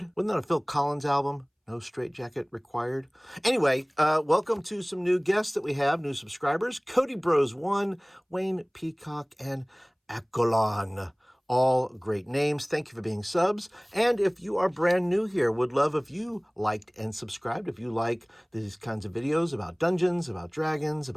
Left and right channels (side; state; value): both; identical; correlation 1.00